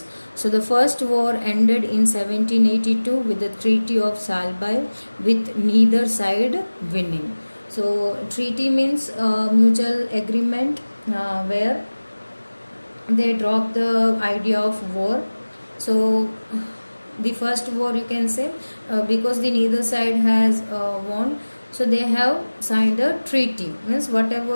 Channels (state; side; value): inverted; both; correlation -1.00